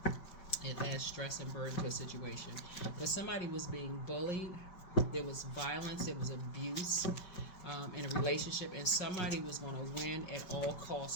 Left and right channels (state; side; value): late; right; 5.2 ms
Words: It adds stress and burden to a situation. Because somebody was being bullied, there was violence, there was abuse in a relationship, and somebody was going to win at all